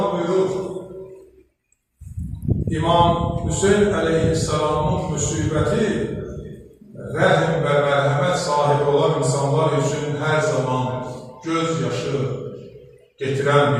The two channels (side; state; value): both; identical; correlation 1.00